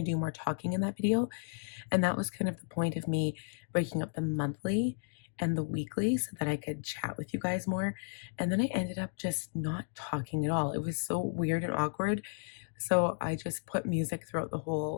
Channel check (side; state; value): right; silent; digital silence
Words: to do more talking in that video, and that was kind of the point of me breaking up the monthly and the weekly so that I could chat with you guys more. And then I ended up just not talking at all. It was so weird and awkward. So I just put music throughout the